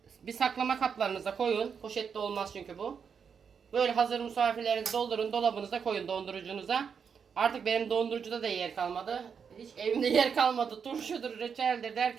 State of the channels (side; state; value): left; quieter; 6.6 dB